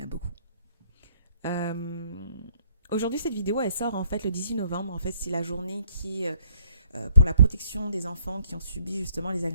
beaucoup. Aujourd'hui, cette vidéo, elle sort en fait le 18 novembre. En fait, c'est la journée qui pour la protection des enfants qui ont subi justement les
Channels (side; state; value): both; inverted; correlation -0.67